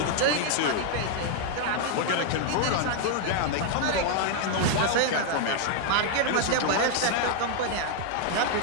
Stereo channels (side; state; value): both; different; correlation 0.00